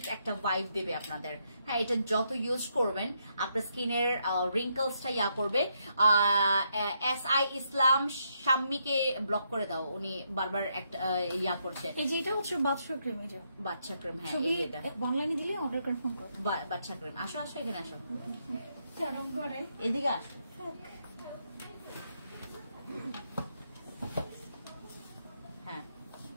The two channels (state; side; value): inverted; both; correlation -0.77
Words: একটা ভাইব দেবে আপনাদের। হ্যাঁ, এটা যত ইউজ করবেন আপনার স্কিনের রিঙ্কলসটা ইয়া করবে। SI ইসলাম শাম্মীকে ব্লক করে দাও, উনি বারবার একটা ইয়া করছে। এই যেটা হচ্ছে বাচ্চা ক্রিম, এটা বাচ্চা ক্রিম। হ্যাঁ, ছবি এটা অনলাইনে দিলে অর্ডার কনফার্ম করো। বাচ্চা ক্রিম। আসো আসো, এখানে আসো, চরম করে এদিকে আসো। হ্যাঁ,